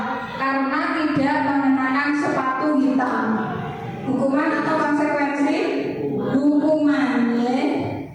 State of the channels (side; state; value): both; identical; correlation 1.00